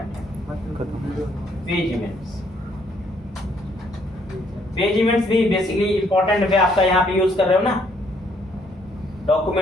है। पेज इवेंट्स, पेज इवेंट्स भी बेसिकली इंपॉर्टेंट है। आपका यहाँ पे यूज कर रहे हो ना,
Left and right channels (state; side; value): normal; both; correlation 0.68